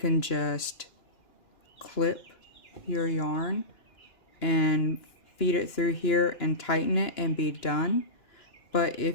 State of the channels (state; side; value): late; right; 2.9 ms